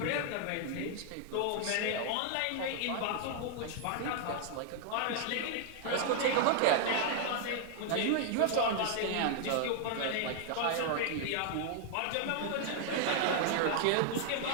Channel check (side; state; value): both; different; correlation 0.00